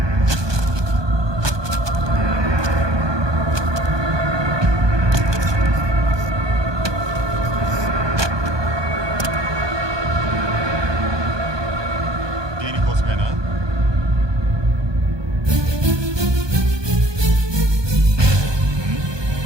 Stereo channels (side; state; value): left; late; 1.2 ms